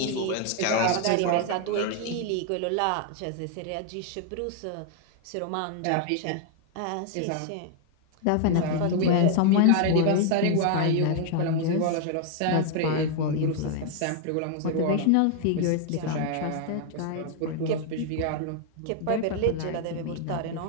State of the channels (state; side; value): different; both; correlation 0.00